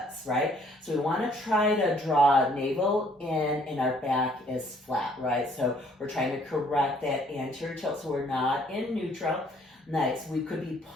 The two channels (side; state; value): both; normal; correlation 0.62